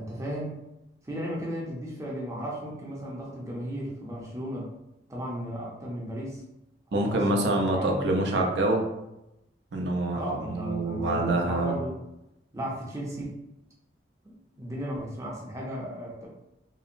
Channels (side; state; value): both; normal; correlation 0.44